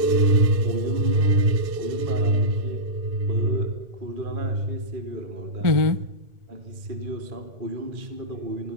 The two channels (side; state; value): left; late; 2.6 ms